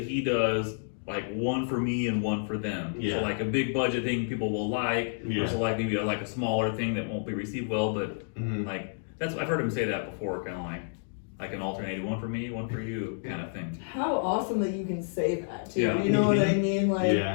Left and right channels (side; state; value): right; silent; digital silence